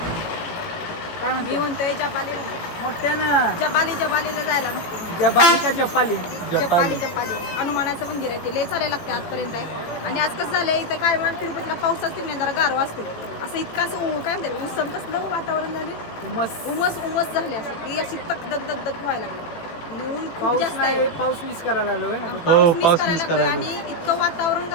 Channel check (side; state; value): right; late; 18 ms